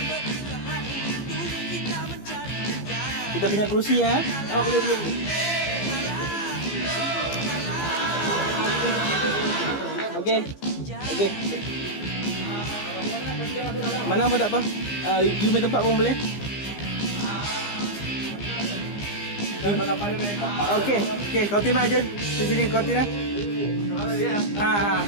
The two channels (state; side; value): late; right; 15 ms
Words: punya kerusi ya. Oh, boleh. Okey. Mana pun tak apa. You main tempat pun boleh. Okey, kau timah aje. Di sini kau timah.